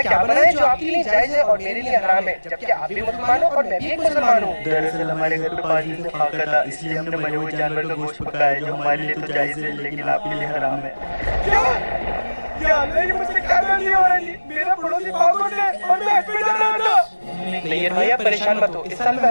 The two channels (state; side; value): inverted; both; correlation -1.00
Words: क्या बना है जो आपके लिए जायज है और मेरे लिए हराम है, जबकि आप भी मुसलमान हो और मैं भी एक मुसलमान हूँ? दरअसल हमारे घर पे पाजी से फाका था, इसलिए हमने मरे हुए जानवर का गोश्त पकाया है, जो हमारे लिए तो जायज है लेकिन आपके लिए हराम है। क्या? या अल्लाह, ये मुझसे क्या गलती हो रही है? मेरा पड़ोसी पागल है और मैं हज पे जा रहा था। नहीं भाई, आप परेशान मत हो, इस साल मैं